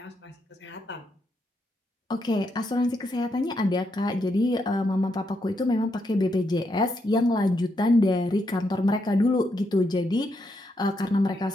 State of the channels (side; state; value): both; normal; correlation 0.80